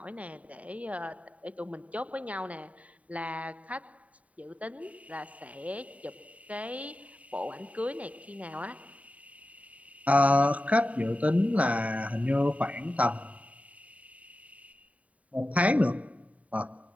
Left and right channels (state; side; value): late; left; 0.068 ms